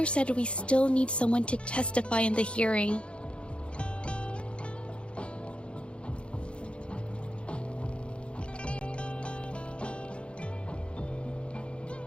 said we still need someone to testify in the hearing.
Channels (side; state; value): right; late; 0.058 ms